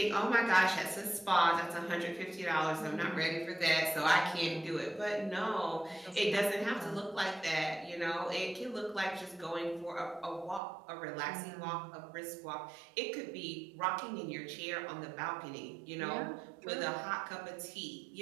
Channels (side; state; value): left; drops out; at 10.6 s